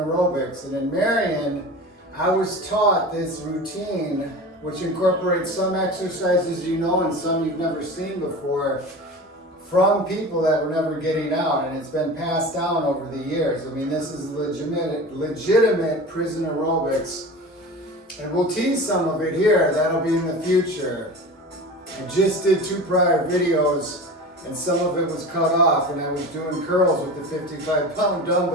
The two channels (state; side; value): normal; both; correlation 0.33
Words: And in Marion, I was taught this routine, which incorporates some exercises you know and some you've never seen before, from people that were never getting out, and it's been passed down over the years. I mean, this is legitimate prison aerobics, and we'll tease some of it here. That'll be in the future. I just did 2 prior videos, and some of it was cut off, and I was doing curls with the 55-pound